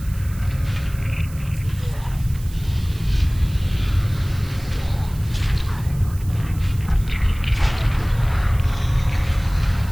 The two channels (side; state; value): right; noise; hiss, 20 dB below the sound